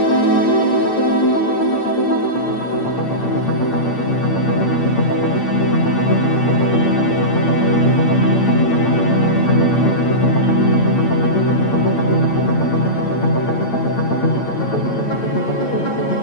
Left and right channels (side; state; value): right; late; 8.8 ms